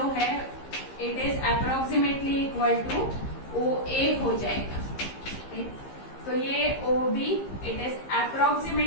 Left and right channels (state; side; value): late; right; 15 ms